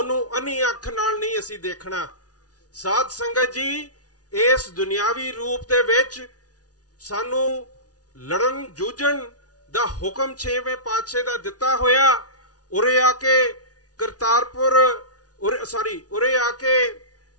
ਅੰਨੀ ਅੱਖ ਨਾਲ ਨਹੀਂ ਅਸੀਂ ਦੇਖਣਾ। ਸਾਧ ਸੰਗਤ ਜੀ, ਇਸ ਦੁਨਿਆਵੀ ਰੂਪ ਦੇ ਵਿੱਚ ਸਾਨੂੰ ਲੜਨ ਜੂਝਣ ਦਾ ਹੁਕਮ 6ਵੇਂ ਪਾਤਸ਼ਾਹ ਦਾ ਦਿੱਤਾ ਹੋਇਆ, ਉਰੇ ਆ ਕੇ ਕਰਤਾਰਪੁਰ ਉਰੇ ਆ ਕੇ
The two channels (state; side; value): late; right; 0.68 ms